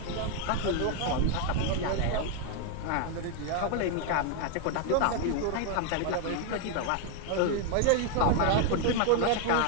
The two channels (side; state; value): both; different; correlation 0.01